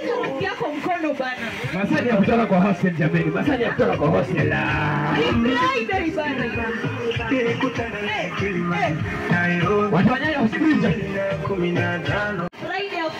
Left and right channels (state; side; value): identical; both; correlation 1.00